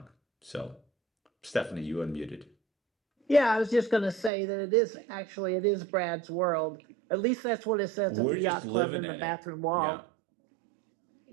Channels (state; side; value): drops out; left; at 4.3 s